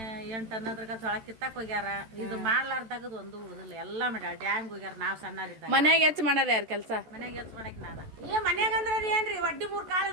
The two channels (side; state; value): left; late; 14 ms